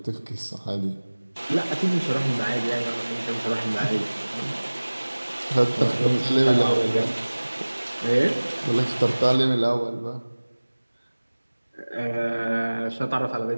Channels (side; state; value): both; inverted; correlation -1.00